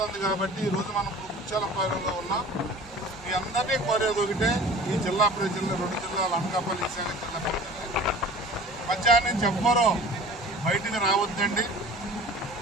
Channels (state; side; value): normal; both; correlation 0.43